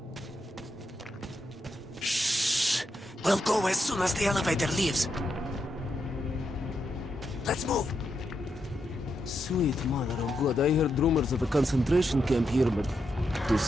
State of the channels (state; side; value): normal; both; correlation 0.83